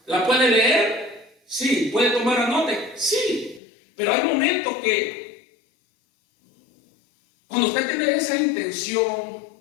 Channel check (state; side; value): drops out; right; at 3.6 s